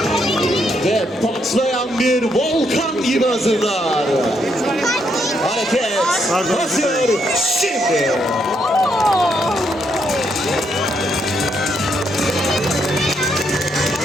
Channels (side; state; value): both; normal; correlation 0.76